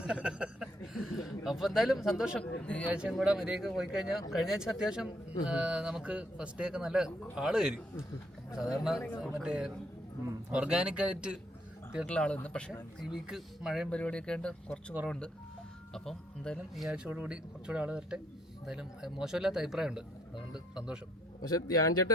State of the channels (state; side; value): normal; both; correlation 0.71